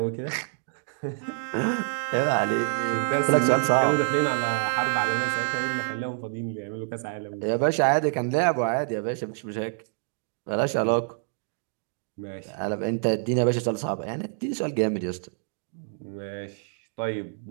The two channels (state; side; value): silent; left; digital silence